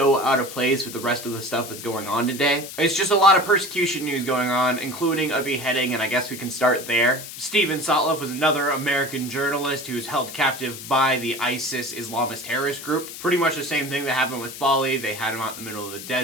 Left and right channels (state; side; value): noise; left; hiss, 11 dB below the sound